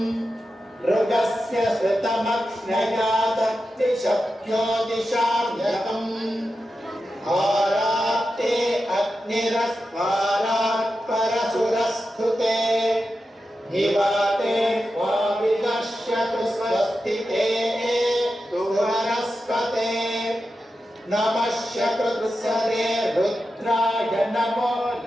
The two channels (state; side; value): normal; both; correlation 0.91